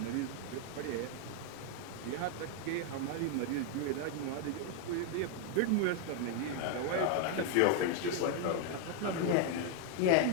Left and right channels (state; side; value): different; both; correlation 0.00